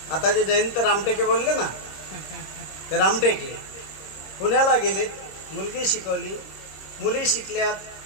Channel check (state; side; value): late; right; 26 ms